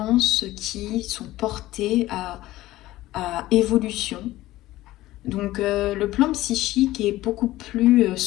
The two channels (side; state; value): right; quieter; 16.4 dB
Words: qui sont portées à évolution. Donc le plan psychique est beaucoup plus